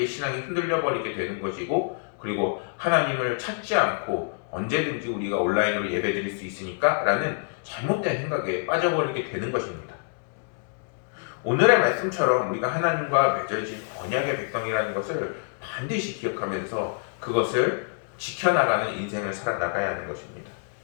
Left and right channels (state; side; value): silent; right; digital silence